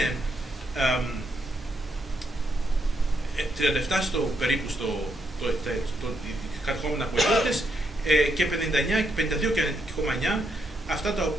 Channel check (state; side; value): normal; both; correlation 0.78